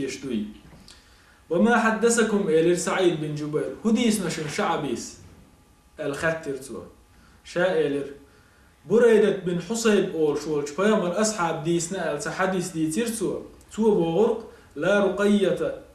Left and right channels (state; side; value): identical; both; correlation 1.00